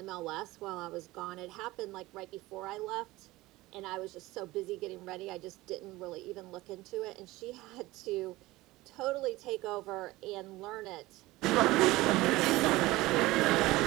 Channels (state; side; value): quieter; left; 19.1 dB